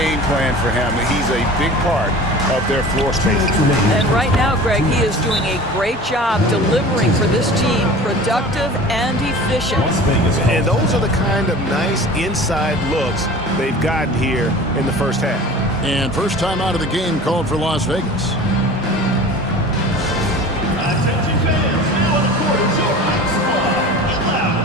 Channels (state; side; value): normal; both; correlation 0.40